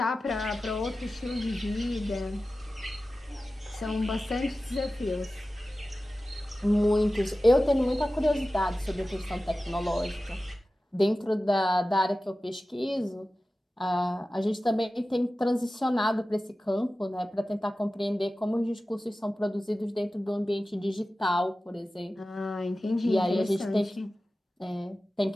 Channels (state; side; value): normal; both; correlation 0.95